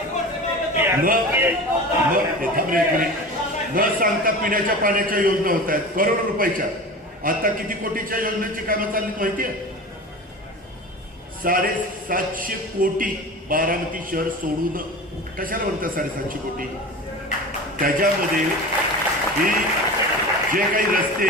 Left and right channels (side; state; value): both; normal; correlation 0.33